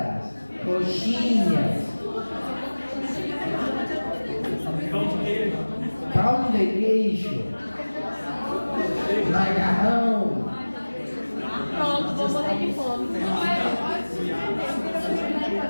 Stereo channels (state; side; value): inverted; both; correlation -1.00